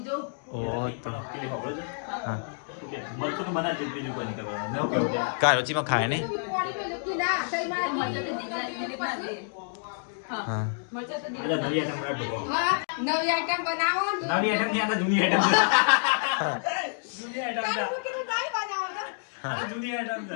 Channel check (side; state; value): right; silent; digital silence